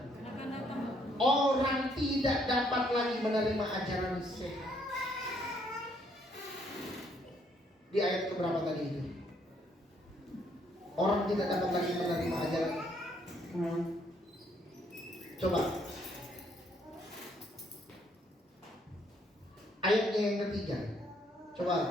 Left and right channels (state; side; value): normal; both; correlation 0.69